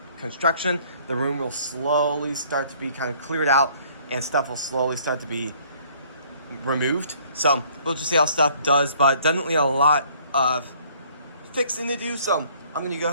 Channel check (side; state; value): both; inverted; correlation -0.58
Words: construction. The room will slowly start to be kind of cleared out, and stuff will slowly start to be removed. So we'll just see how stuff does, but definitely a lot of fixing to do. So I'm going to go